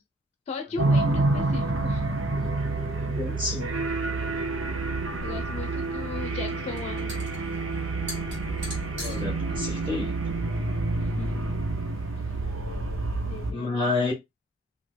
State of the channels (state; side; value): normal; both; correlation 0.59